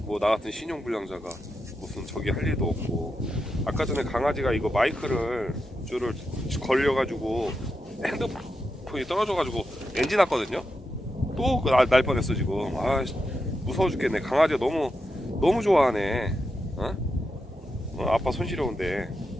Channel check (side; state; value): both; normal; correlation 0.87